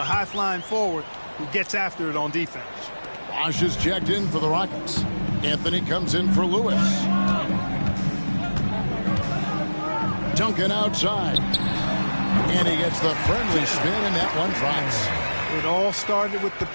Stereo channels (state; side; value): inverted; both; correlation -1.00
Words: A high-flying forward who gets after it on defense. Bosch is checked in for the Rockets. Anthony comes in for Lewis. Duncan outside. And he gets the friendly spin, and that one drops. It all started with the